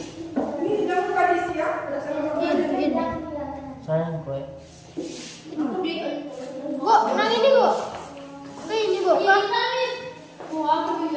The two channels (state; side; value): identical; both; correlation 1.00